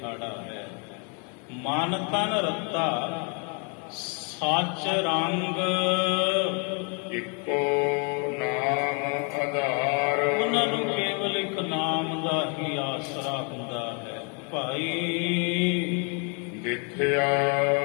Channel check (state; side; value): quieter; right; 36.3 dB